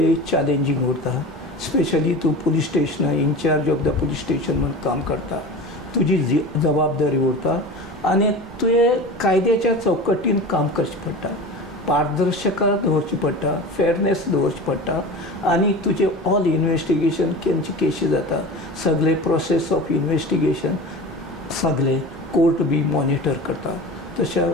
चॅलेंजींग उरता, स्पेशली तूं पुलीस स्टेशना in charge of the police station म्हणून काम करता, तुजी जबाबदारी उरता आनी तुवें कायद्याच्या चौकटीन काम करचें पडटा, पारदर्शकता दवरची पडटा, फेअरनेस दवरची पडटा आनी तुजे ऑल इन्वेस्टिगेशन खंयची केसी जाता, सगळे प्रोसेस ऑफ इन्वेस्टिगेशन सगळे कोर्ट बी मॉनिटर करता,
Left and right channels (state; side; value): normal; both; correlation 0.33